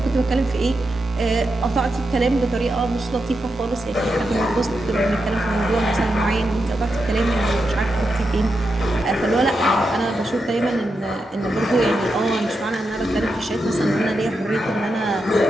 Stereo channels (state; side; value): normal; both; correlation 0.86